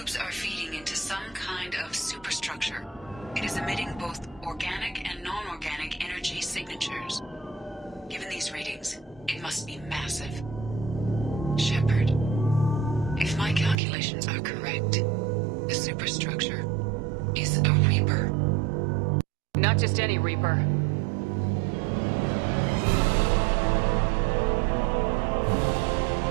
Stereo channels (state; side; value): drops out; left; at 13.8 s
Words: are feeding into some kind of superstructure. It is emitting both organic and non-organic energy signatures. Given these readings, it must be massive. Shepard, if my calculations are correct, the superstructure is a Reaper. Not just any Reaper.